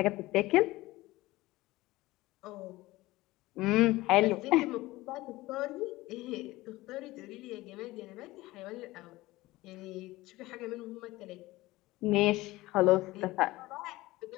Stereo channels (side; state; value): right; quieter; 18.9 dB